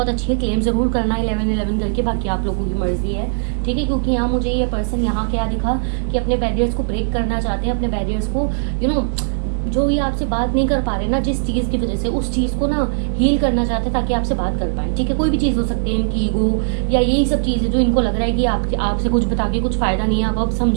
अच्छी है, क्लेम जरूर करना है 11-11 करके, बाकी आप लोगों की मर्जी है, ठीक है। क्योंकि यहाँ मुझे ये पर्सन यहाँ क्या दिखा कि अपने बैरियर्स को ब्रेक करना चाहते हैं, अपने बैरियर्स को जो ये आपसे बात नहीं कर पा रहे ना जिस चीज़ की वजह से, उस चीज़ को ना हील करना चाहते हैं ताकि आपसे बात कर पाए, ठीक है। कोई भी चीज़ हो सकती है, इनकी ईगो या यही सब चीज़ें जो इनको लग रहा है कि आपसे कुछ बता के कुछ फ़ायदा नहीं है, आप अब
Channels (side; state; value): left; silent; digital silence